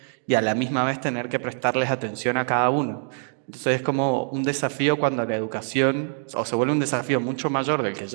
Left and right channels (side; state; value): left; silent; digital silence